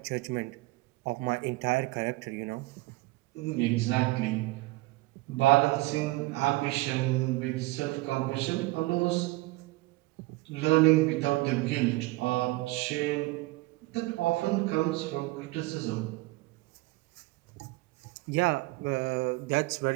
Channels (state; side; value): quieter; left; 20.7 dB